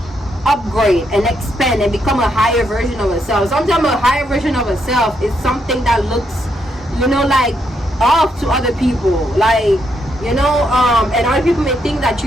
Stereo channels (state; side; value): normal; both; correlation 0.78